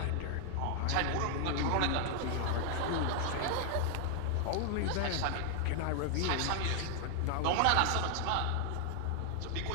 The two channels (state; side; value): different; both; correlation 0.00